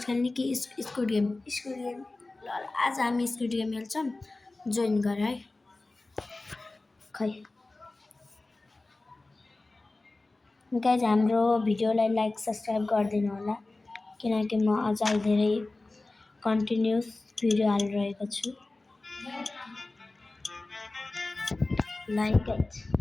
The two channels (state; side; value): quieter; right; 3.1 dB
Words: खेल्ने कि स्कुड गेम School game. ल आज हामी स्कुड गेम खेल्छौँ जोइन गर है खै गाइज हाम्रो भिडियोलाई लाइक सब्सक्राइब गरिदिनु होला किनकि म अझै धेरै कन्टिन्युस भिडियो हालिरहेको छु लाइक गाइज